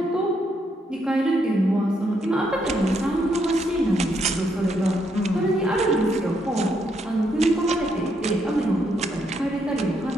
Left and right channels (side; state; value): both; normal; correlation 0.76